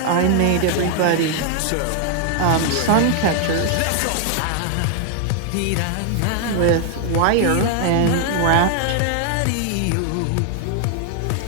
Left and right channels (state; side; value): different; both; correlation 0.00